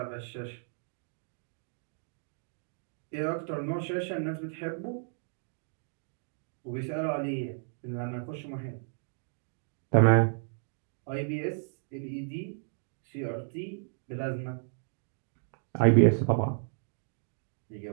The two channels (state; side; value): silent; left; digital silence